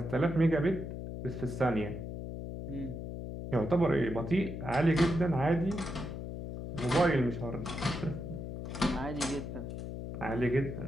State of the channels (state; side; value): noise; left; hum, 7 dB below the sound